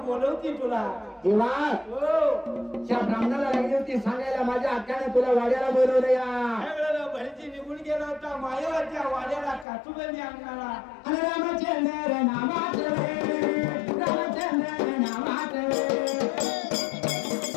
बोलवती तुला. देवा हो त्या ब्राह्मणाला लागली होती सांगायला माझ्या हक्काने तुला वाड्याला बोलवलं या. त्यावेळेला भरती निघून गेला होता मायावाच्या वाड्याला काचुबंदी अंगणाला. आणि रामचंद्र नामाचे रामचंद्र नामाचे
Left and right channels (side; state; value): right; drops out; at 9.7 s